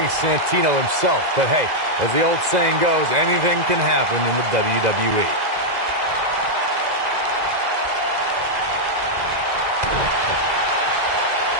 Santino himself. But hey, as the old saying goes, anything can happen in the WWE.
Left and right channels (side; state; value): left; late; 2.0 ms